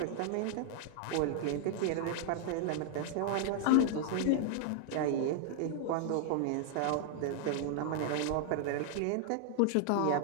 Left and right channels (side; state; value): both; different; correlation 0.00